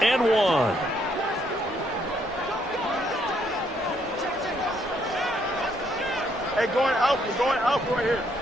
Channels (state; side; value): normal; both; correlation 0.71